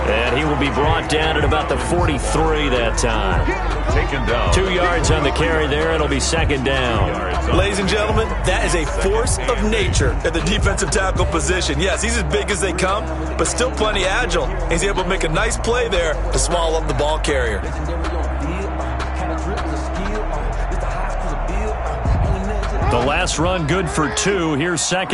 and he will be brought down at about the 43 that time. Taken down. 2 yards on the carry there. It'll be second down. Ladies and gentlemen, that is a force of nature at the defensive tackle position. Yes, he's as big as they come, but still plenty agile. He's able to make a nice play there to swallow up the ball carrier. The last run good for 2. Here's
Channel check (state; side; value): identical; both; correlation 1.00